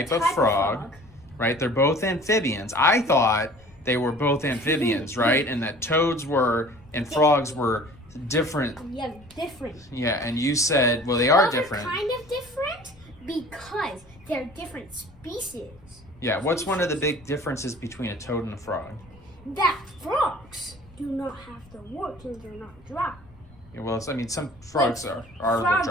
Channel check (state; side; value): noise; left; rumble, 25 dB below the sound